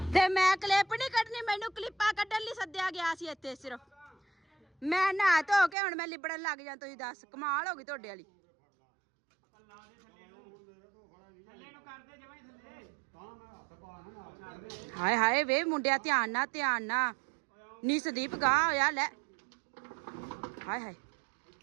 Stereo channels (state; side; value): drops out; left; at 5.8 s